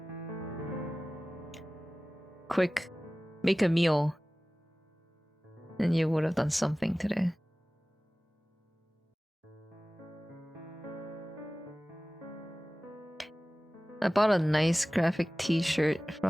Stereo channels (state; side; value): normal; both; correlation 0.97